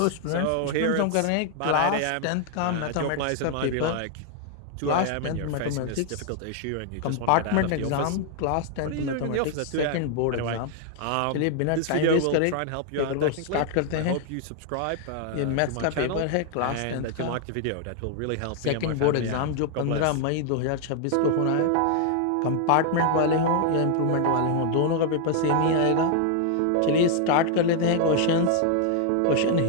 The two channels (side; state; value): both; different; correlation 0.00